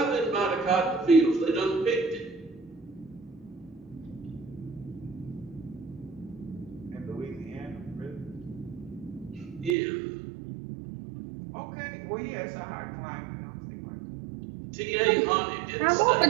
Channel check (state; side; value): drops out; left; at 9.8 s